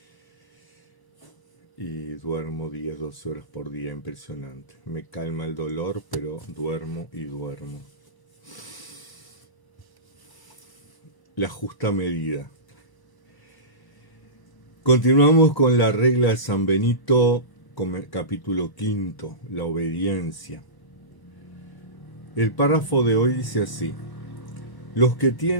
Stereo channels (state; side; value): late; right; 1.0 ms